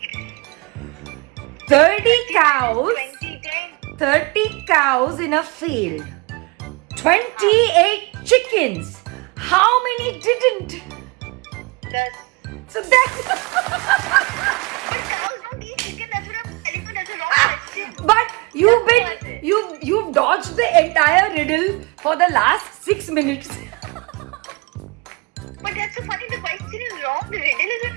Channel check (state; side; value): quieter; left; 26.8 dB